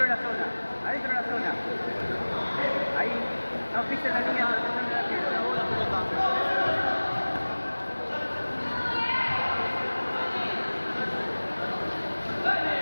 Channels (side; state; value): both; inverted; correlation -1.00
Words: de la zona, adentro de la zona. Ahí, no pisen la línea donde está el arquero, no bola pelota.